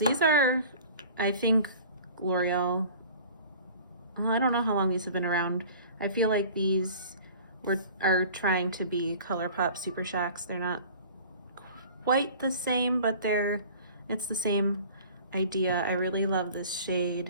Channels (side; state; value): both; inverted; correlation -0.44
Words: are, I think, L'Oreal, I don't know how long these have been around. I feel like these are trying to be ColourPop Super Shocks. They're not quite the same, but it's the same idea. I really love this shade,